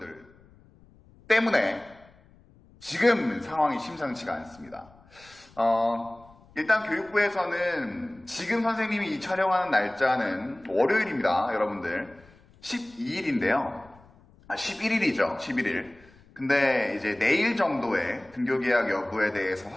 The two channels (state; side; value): noise; left; rumble, 27 dB below the sound